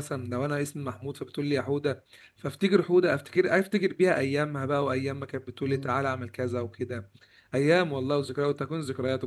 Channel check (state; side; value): identical; both; correlation 1.00